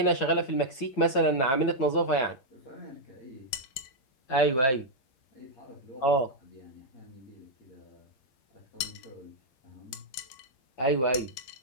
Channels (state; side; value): late; right; 9.4 ms